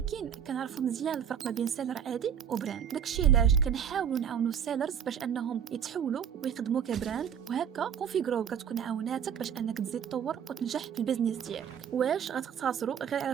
كنعرفوا مزيان الفرق ما بين سيلر عادي وبراند. داكشي علاش كنحاولوا نعاونوا السيلرز باش انهم يتحولوا ويخدموا كبراند، وهكا كونفيغرو كتكون عاوناتك باش انك تزيد تطور وتنجح في البيزنس ديالك. واش غتقتصروا غير على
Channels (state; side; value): quieter; left; 8.3 dB